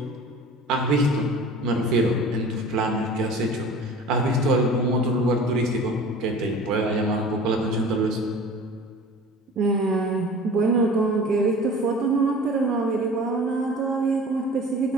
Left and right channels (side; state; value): both; normal; correlation 0.41